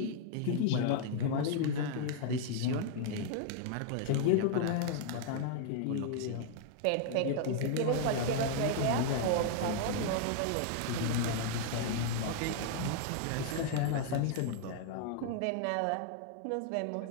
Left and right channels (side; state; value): both; different; correlation -0.01